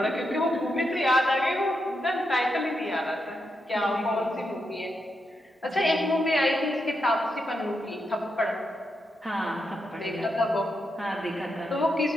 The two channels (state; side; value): normal; both; correlation 0.84